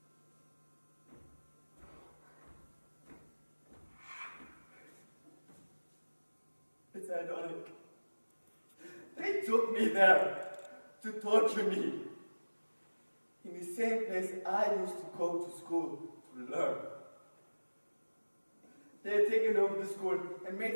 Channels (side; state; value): both; inverted; correlation -1.00